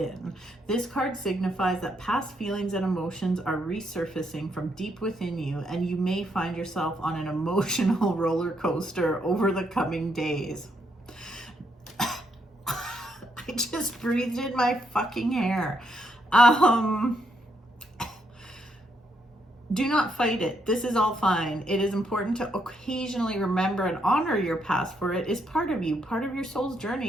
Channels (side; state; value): both; normal; correlation 0.76